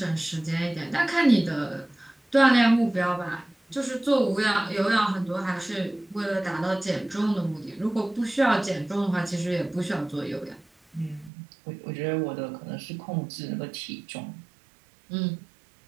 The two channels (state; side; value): drops out; left; at 11.3 s